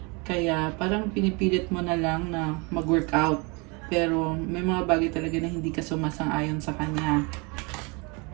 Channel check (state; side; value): quieter; left; 29.5 dB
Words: Kaya parang pinipilit mo na lang na mag-workout. Pero may mga bagay talaga na hindi ka sumasang-ayon sa kanya.